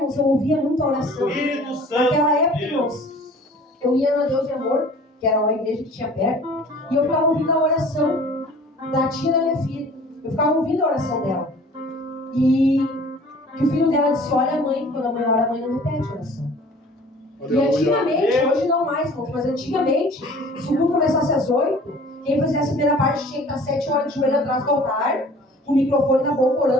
eu ouvia muita oração. Naquela época, irmãos, eu ia na Deus de Amor, que era uma igreja que tinha perto, e eu ficava ouvindo a oração da tia da minha filha. Eu ficava ouvindo a oração dela. E que o filho dela disse: olha, mãe, quando a mãe ora, a mãe não repete a oração. E antigamente, hoje não mais, irmãos, mas antigamente, se o culto começasse às 8, quem fizesse a primeira parte tinha que estar 7 horas de joelho atrás do altar, com o microfone na boca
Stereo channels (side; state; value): both; normal; correlation 0.48